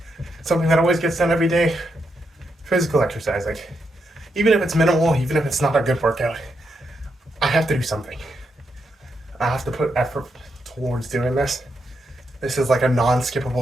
something that always gets done every day, physical exercise. Like, even if it's minimal, even if it's not a good workout, I have to do something. I have to put effort towards doing this. This is like a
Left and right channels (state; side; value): normal; both; correlation 0.82